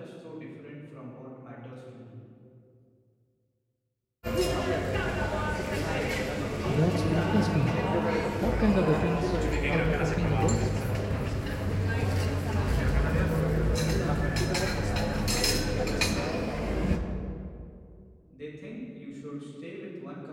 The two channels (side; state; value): both; identical; correlation 1.00